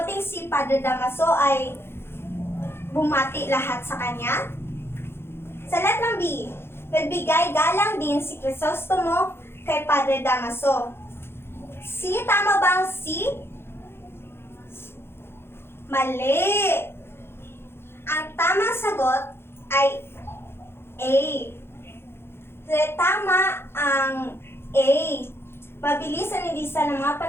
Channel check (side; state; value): right; late; 0.11 ms